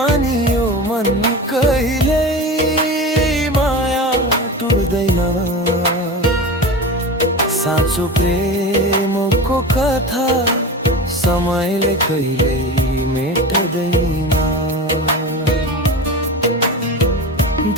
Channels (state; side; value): normal; both; correlation 0.28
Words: यो मन कहिल्यै माया टुट्दैन साँचो प्रेमको कथा समयले कहिल्यै मेट्दैन